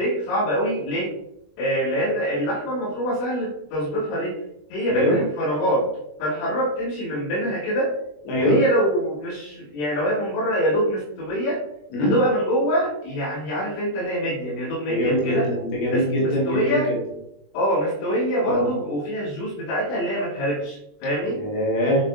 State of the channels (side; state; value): right; late; 20 ms